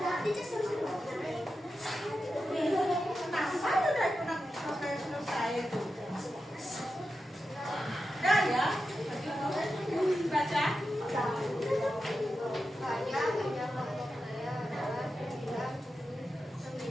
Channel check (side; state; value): both; normal; correlation 0.90